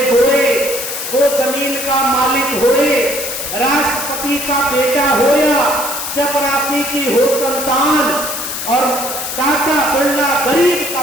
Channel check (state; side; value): noise; left; hiss, 5 dB below the sound